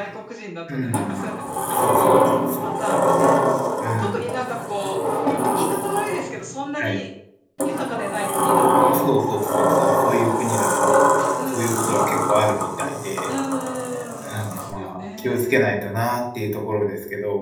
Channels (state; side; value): identical; both; correlation 1.00